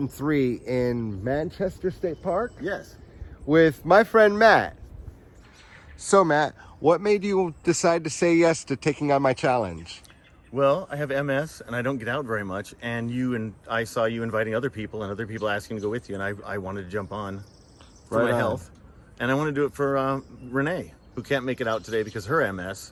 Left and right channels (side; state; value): both; identical; correlation 1.00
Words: in Manchester State Park. Yes. With my friend Matt. So Matt, what made you decide to say yes to taking on my challenge? Well, I have MS and I don't get out very much, and I saw you inviting other people and other people asking to go with you, and I wanted to jump on for Right my on. health, and I want to do it for Renee, who can't make it out today because her